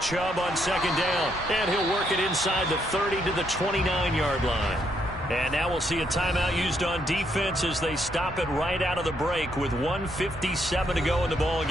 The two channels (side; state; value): both; normal; correlation 0.75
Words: Chubb on second down, and he'll work it inside the 30 to the 29-yard line. And now we'll see a timeout used on defense as they stop it right out of the break with 1:57 to go in the ball